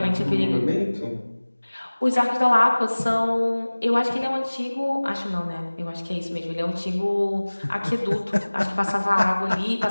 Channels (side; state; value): both; inverted; correlation -1.00